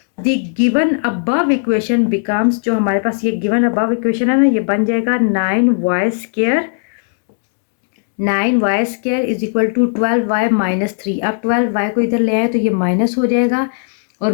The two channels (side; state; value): right; silent; digital silence